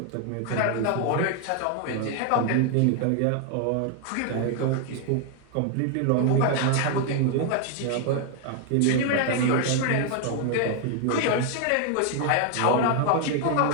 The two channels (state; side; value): different; both; correlation 0.00